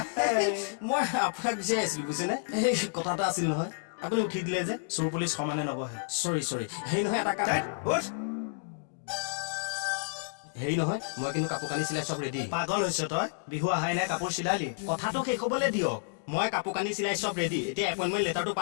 মই আপোনাক বিচাৰি আছিলো বুজিছেনে, এই কথা এটা আছিল নহয়, আপুনি উঠি দিলে যে। চোৰ পুলিচ সমানে নবহে। চৰি হেৰি নহয়, এটা কাম হেৰি নহয়, মই কিন্তু কাপোৰ কানি চিলাই চব ৰেডি। পাগল হৈছ তই? বিহু আহাই নাই, কাপোৰ চিলালি? কথাটো শেষ হ'বলৈ দিয়ক। মই কাপোৰ কানি চিলাই চব ৰেডি, এতিয়া এপইণ্টমেণ্ট লেটাৰটো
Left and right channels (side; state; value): right; silent; digital silence